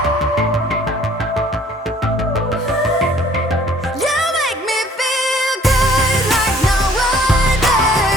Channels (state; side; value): normal; both; correlation 0.56